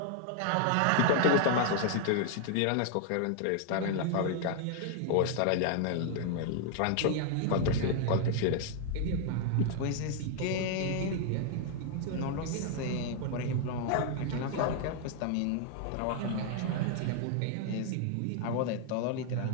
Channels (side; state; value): both; different; correlation 0.00